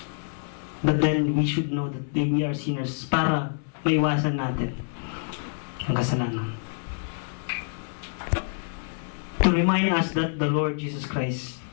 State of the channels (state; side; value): silent; right; digital silence